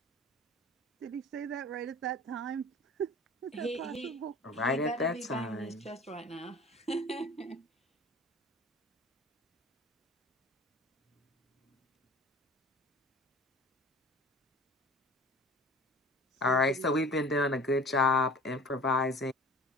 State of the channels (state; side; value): normal; both; correlation 0.42